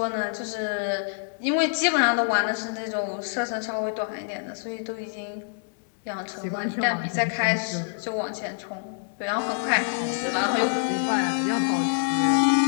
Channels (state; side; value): silent; right; digital silence